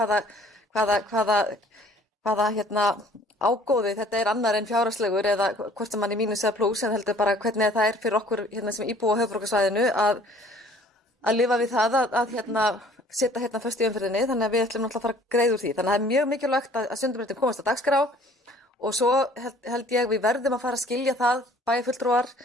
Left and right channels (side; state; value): both; normal; correlation 0.54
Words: Hvaða ágóði þetta er annar en fjárhagslegur eða hvort sem hann er mínus eða plús en heldur bara hvernig það er fyrir okkur hérna sem íbúa á höfuðborgarsvæðinu að lifa við það að setja hérna föst í umferðinni þannig að við ætlum náttúrulega að fara að greiða úr því. Þannig að það er mjög mikilvægt að Sundabrautin komast á dagskrá og svo held ég við verðum að fara að skilja það bæjarfulltrúar